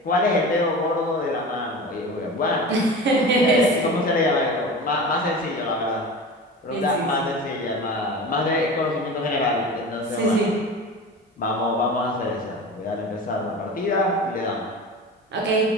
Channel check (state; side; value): normal; both; correlation 0.32